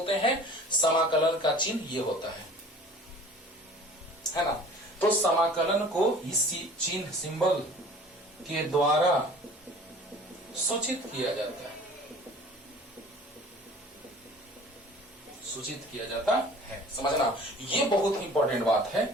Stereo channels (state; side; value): normal; both; correlation 0.46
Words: हैं। समाकलन का चिन्ह ये होता है ना। तो समाकलन को इस चिन्ह, सिंबल के द्वारा सूचित किया जाता है। सूचित किया जाता है। समझना, ये बहुत ही इंपॉर्टेंट बात है।